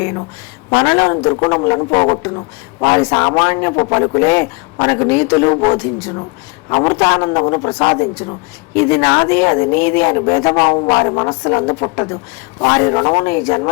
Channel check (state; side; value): quieter; right; 28.2 dB